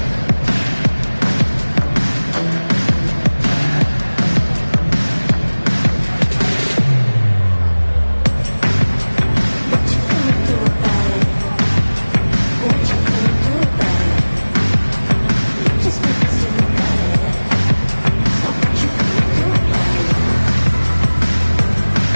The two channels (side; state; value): both; inverted; correlation -1.00